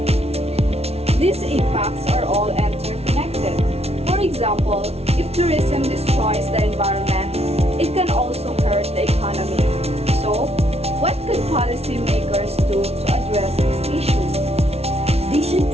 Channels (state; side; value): late; left; 0.30 ms